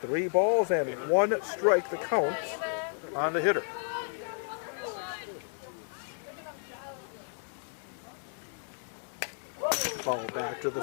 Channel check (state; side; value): silent; right; digital silence